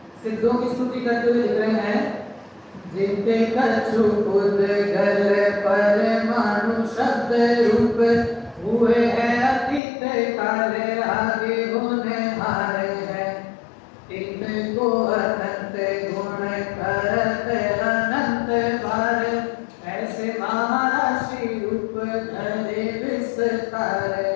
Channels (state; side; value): drops out; right; at 9.8 s